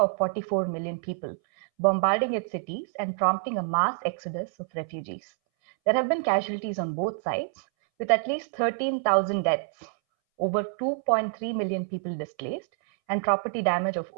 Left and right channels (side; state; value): left; silent; 60 dB below the other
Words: 44 million people, bombarding its cities and prompting a mass exodus of refugees. There have been casualties on both sides, with at least 13,000 deaths, over 2.3 million people displaced, and property damage of